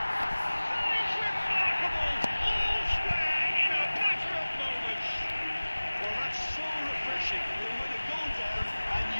It's remarkable! All square in a matter of moments. Well, that's so refreshing. They win a goal down, and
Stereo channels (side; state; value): both; inverted; correlation -1.00